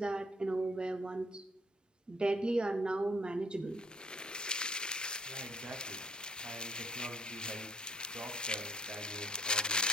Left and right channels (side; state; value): both; normal; correlation 0.62